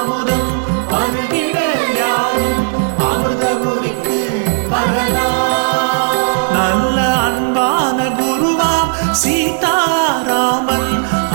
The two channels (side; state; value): left; silent; digital silence